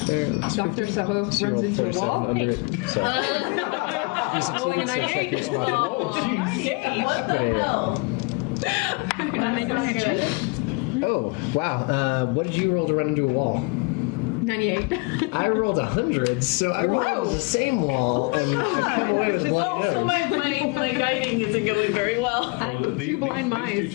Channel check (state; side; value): quieter; right; 28.7 dB